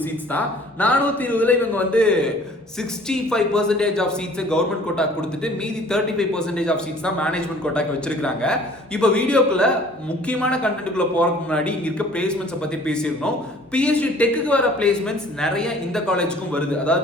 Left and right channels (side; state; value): both; normal; correlation 0.52